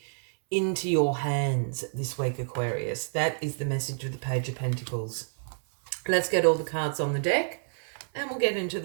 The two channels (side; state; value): left; silent; 59 dB below the other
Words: into your hands this week, Aquarius. That is the message of the Page of Pentacles. Let's get all the cards on the deck and we'll get into